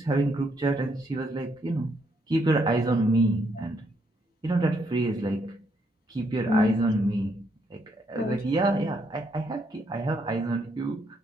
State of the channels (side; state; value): both; normal; correlation 0.74